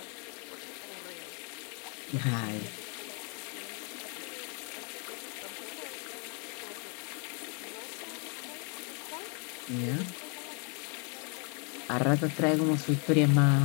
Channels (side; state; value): right; quieter; 36.6 dB